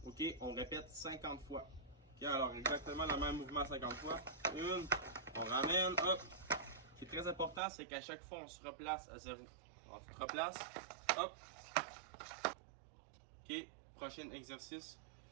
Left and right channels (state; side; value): drops out; left; at 7.6 s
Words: OK, on répète 50 fois. OK? Alors, exactement le même mouvement 50 fois. Une, on ramène, hop. Ce qui est très important, c'est qu'à chaque fois, on se replace à zéro. On se replace, hop. OK? Prochain exercice,